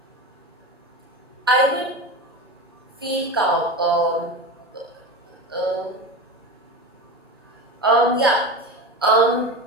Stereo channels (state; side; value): normal; both; correlation 0.25